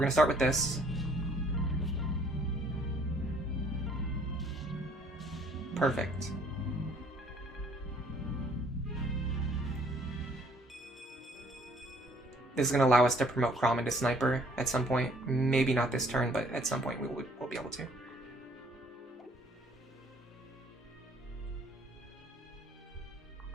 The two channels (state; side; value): normal; both; correlation 0.60